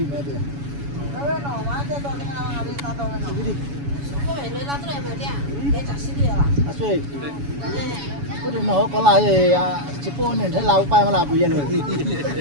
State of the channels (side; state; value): left; late; 7.1 ms